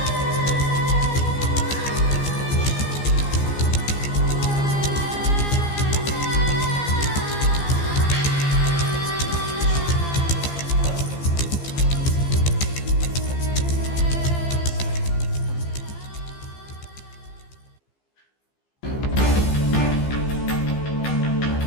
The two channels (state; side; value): late; right; 15 ms